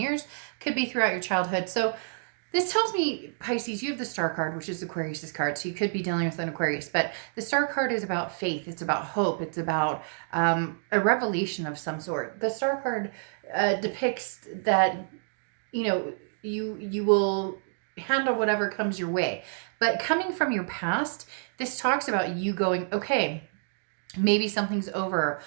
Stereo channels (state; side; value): silent; left; digital silence